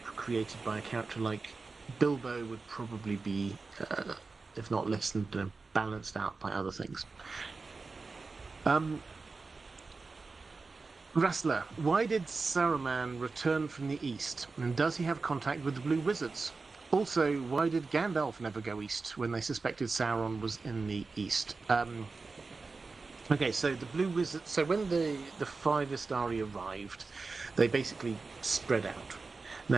created by a character like Bilbo would probably be, if not lessened, balanced out by other things. Rassler, why did Saruman return from the east? And does he have contact with the Blue Wizards? Also, why did Gandalf never go east when they suspected Sauron was in the east? Okay, so the Blue Wizards... So when the five Istari arrived, they basically spread out.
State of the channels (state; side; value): quieter; left; 4.1 dB